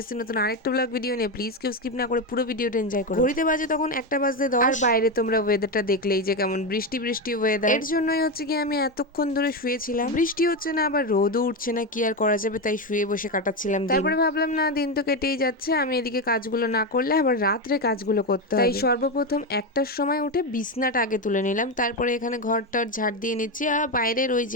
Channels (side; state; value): both; normal; correlation 0.12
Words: এসেছি নতুন আরেকটা ব্লগ ভিডিও নিয়ে। প্লিজ কেউ স্কিপ না করে পুরো ভিডিওটা এনজয় করো। ঘড়িতে বাজে তখন 1:10 আর বাইরে তোমরা ওয়েদারটা দেখলেই যে কেমন বৃষ্টি বৃষ্টি ওয়েদার। এর জন্যই হচ্ছে কি আমি এতক্ষণ ধরে শুয়েছিলাম। বৃষ্টি হচ্ছে না, আবার রোদও উঠছে না, কি আর করা যাবে, তাই শুয়ে বসে কাটাচ্ছিলাম। তারপরে ভাবলাম না, দিন তো কেটেই যাচ্ছে, আমি এদিকে কাজগুলো না করলে আবার রাত্রে কাজগুলো করতে হবে। তাই সর্বপ্রথম 1টার সময় উঠে বিছনাটা আগে তুলে নিলাম। তারপরে এখানে ঘরটার ঝাড় দিয়ে নিচ্ছি। আর বাইরের ওই